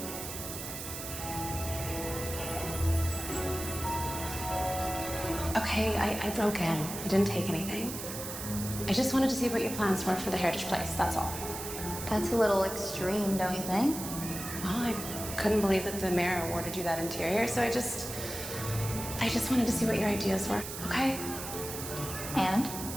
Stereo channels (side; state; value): right; noise; hiss, 8 dB below the sound